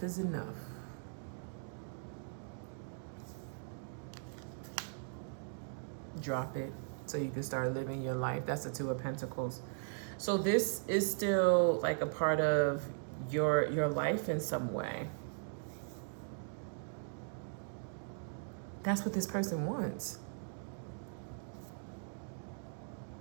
is enough. Drop it so you can start living your life. That's the Two of Pentacles. So this is still like a part of your life in some way. That's what this person wants.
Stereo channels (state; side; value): silent; left; digital silence